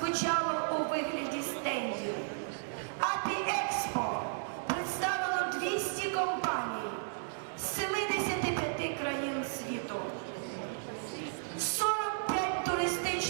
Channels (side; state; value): left; silent; 55 dB below the other